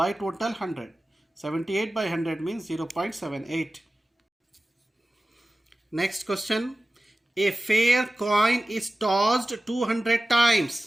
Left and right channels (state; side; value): normal; both; correlation 0.96